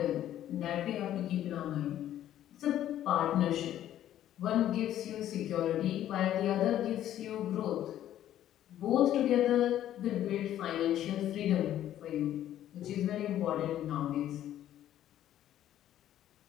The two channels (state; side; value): quieter; right; 12.0 dB